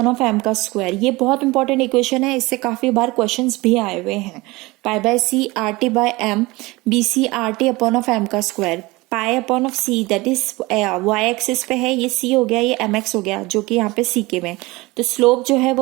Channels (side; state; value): left; quieter; 22.1 dB